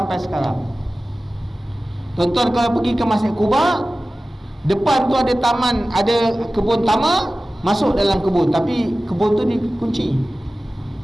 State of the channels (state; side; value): normal; both; correlation 0.96